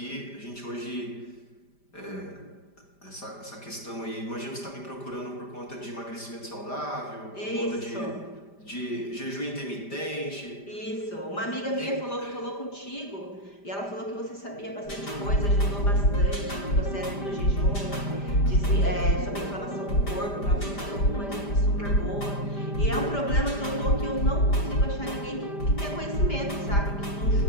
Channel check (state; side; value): late; right; 5.0 ms